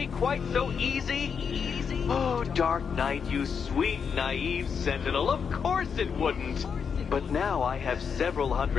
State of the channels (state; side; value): quieter; right; 6.5 dB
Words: quite so easy? Oh, Dark Knight, you sweet, naive sentinel, of course it wouldn't. But now I have several